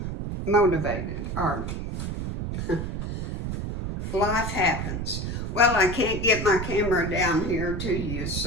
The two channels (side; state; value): right; noise; rumble, 4 dB below the sound